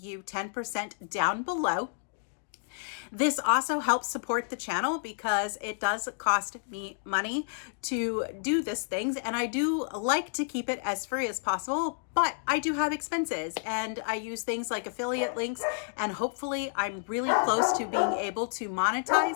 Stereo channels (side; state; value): right; silent; digital silence